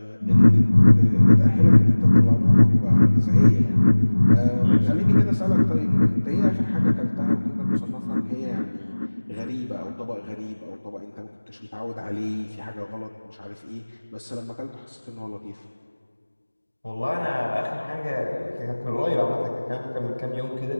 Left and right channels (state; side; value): inverted; both; correlation -1.00